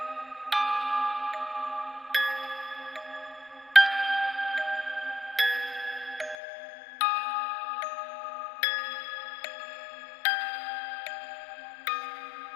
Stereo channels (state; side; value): drops out; right; at 6.4 s